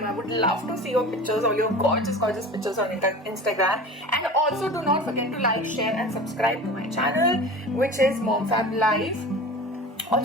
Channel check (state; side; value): normal; both; correlation 0.36